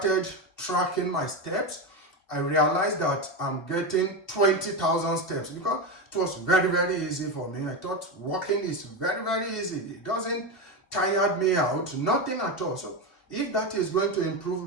tracking my steps. I realized that I'm getting 20,000 steps because it was very, very easy for me. I thought walking is very, very easy. It doesn't tire me out, nothing at all. So if that is going to improve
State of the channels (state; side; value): late; right; 2.6 ms